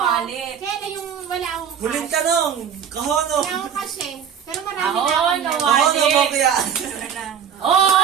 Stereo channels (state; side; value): quieter; left; 8.0 dB